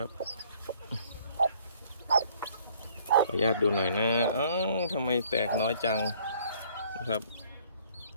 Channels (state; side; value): inverted; both; correlation -0.60